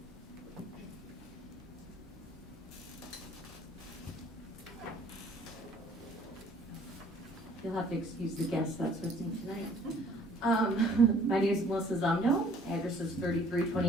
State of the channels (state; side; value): normal; both; correlation 0.57